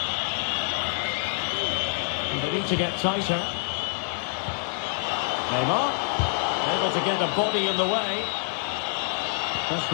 They need to get tighter. Neymar, able to get a body in the way. That's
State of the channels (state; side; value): silent; right; 61 dB below the other